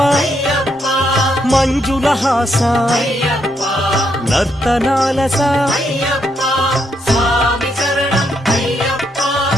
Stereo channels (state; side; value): normal; both; correlation 0.77